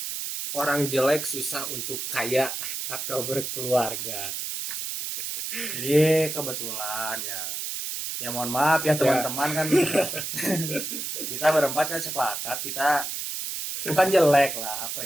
orang jelek susah untuk kaya atau berkeluarga. Jadi kebetulan ya mohon maaf ya teman-teman kan kita berempat kan sepakat kita bukan jelek lah apa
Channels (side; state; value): right; noise; hiss, 4 dB below the sound